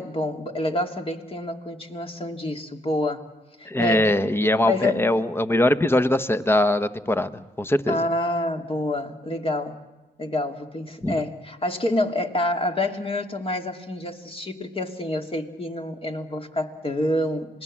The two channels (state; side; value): normal; both; correlation 0.71